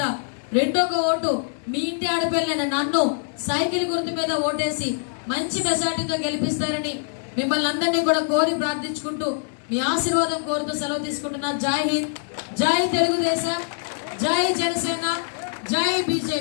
రెండొక ఓటు మీ ఇంటి ఆడపిల్లైన నన్ను సైకిల్ గుర్తు మీద ఓటేసి మంచి మెజార్టీతో గెలిపిస్తారని మిమ్మల్ని అందరినీ కూడా కోరి ప్రార్థించుకుంటూ మీ ఆశీర్వాదం కోరుతూ సెలవు తీసుకుంటున్నా. జై హింద్, జై తెలుగుదేశం, జై జనసేన, జై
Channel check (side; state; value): right; silent; 59 dB below the other